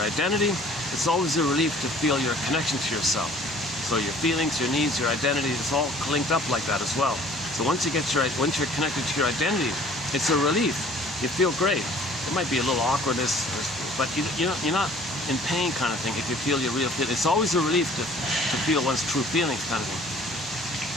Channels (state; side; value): normal; both; correlation 0.52